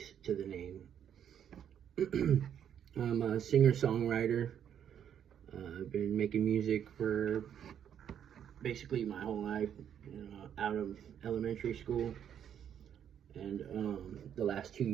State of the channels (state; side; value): quieter; left; 9.1 dB